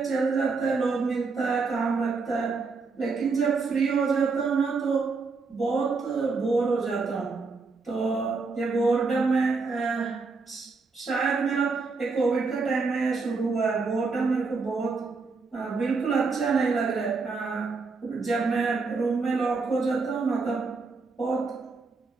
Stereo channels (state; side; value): quieter; left; 4.4 dB